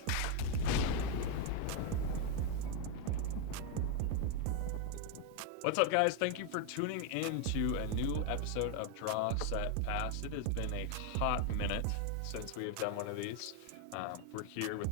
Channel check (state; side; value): different; both; correlation 0.01